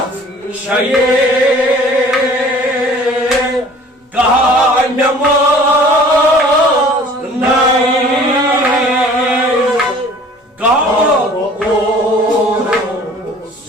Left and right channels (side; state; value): both; normal; correlation 0.49